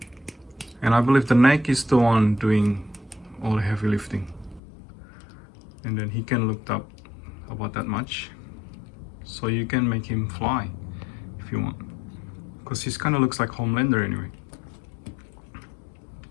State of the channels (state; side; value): drops out; right; at 4.6 s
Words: And I believe the neck is the one doing all the heavy lifting. And then he can look up about that much. So you can make him fly if you want. Because he kind of looks like Homelander anyway.